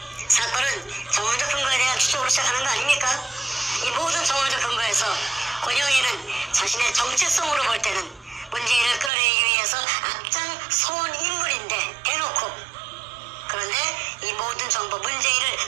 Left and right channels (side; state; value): left; drops out; at 9.1 s